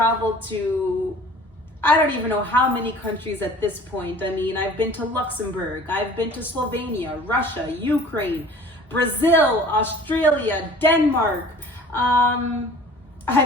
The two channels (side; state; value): both; normal; correlation 0.47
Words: to, I don't even know how many countries at this point. I mean, I've been to Luxembourg, I've been to Slovenia, Russia, Ukraine, Brazil, Australia, Denmark.